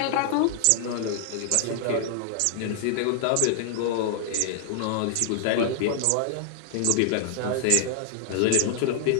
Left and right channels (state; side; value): different; both; correlation -0.01